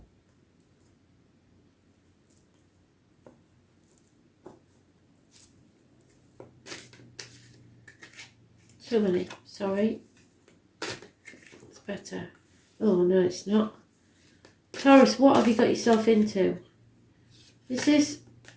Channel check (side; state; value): both; identical; correlation 1.00